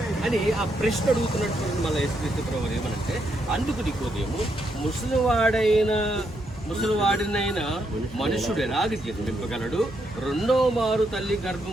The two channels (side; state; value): both; normal; correlation 0.78